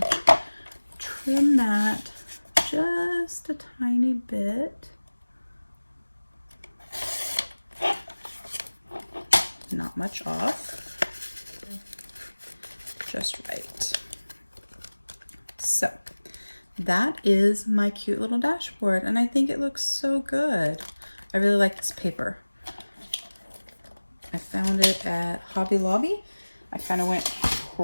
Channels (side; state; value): both; inverted; correlation -1.00